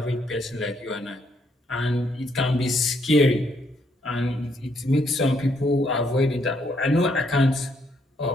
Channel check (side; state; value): both; normal; correlation 0.72